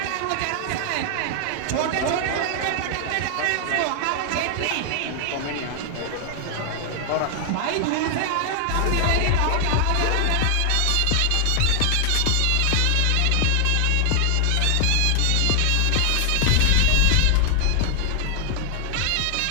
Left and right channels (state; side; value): different; both; correlation 0.00